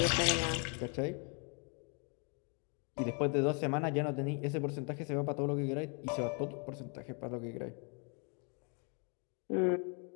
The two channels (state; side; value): quieter; right; 37.1 dB